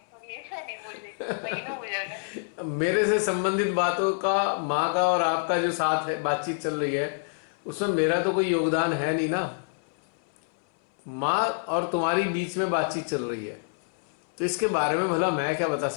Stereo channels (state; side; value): silent; right; 58 dB below the other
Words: थोड़ी नहीं बुझ मेरे से संबंधित बातों का, माँ का और आपका जो साथ है बातचीत चल रही है, उसमें मेरा तो कोई योगदान है नहीं ना। माँ और तुम्हारी बीच में बातचीत चल रही है तो इसके बारे में भला मैं क्या बता